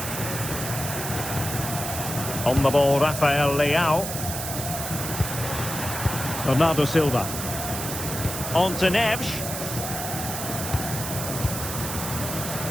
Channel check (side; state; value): right; noise; hiss, 5 dB below the sound